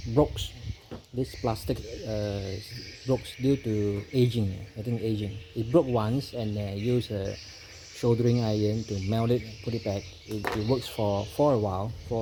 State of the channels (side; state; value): both; identical; correlation 1.00